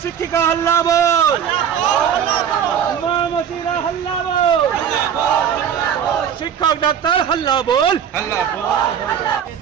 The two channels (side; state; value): left; quieter; 8.5 dB